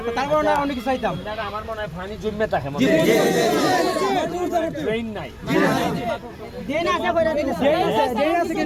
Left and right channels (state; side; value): identical; both; correlation 1.00